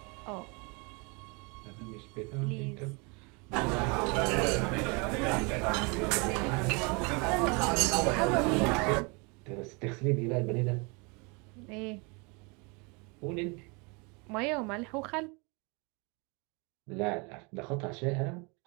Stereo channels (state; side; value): quieter; left; 30.7 dB